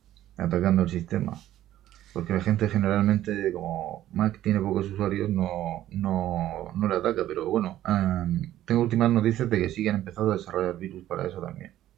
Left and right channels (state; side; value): quieter; left; 13.1 dB